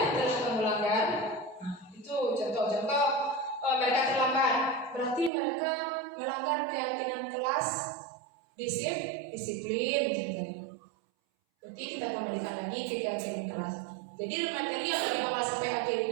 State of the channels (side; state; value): left; drops out; at 5.3 s